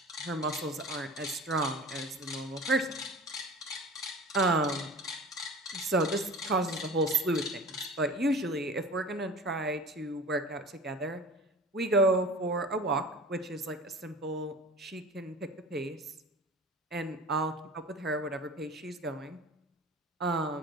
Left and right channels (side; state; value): both; normal; correlation 0.38